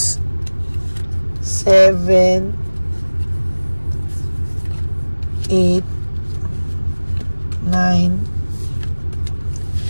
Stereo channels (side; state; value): both; inverted; correlation -1.00